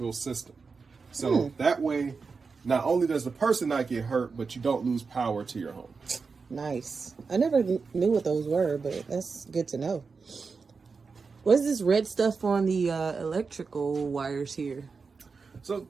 system. So that way, not only does the person not get hurt, but you don't lose power to your home. Nice. I never knew what those were, but that's good to know. What's this red stuff on the electrical wires here? So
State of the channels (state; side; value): quieter; left; 4.8 dB